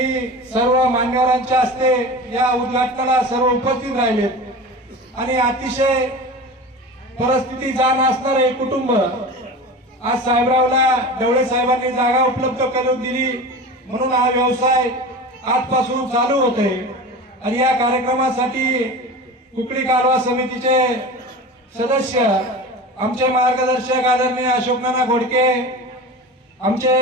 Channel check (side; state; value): both; normal; correlation 0.32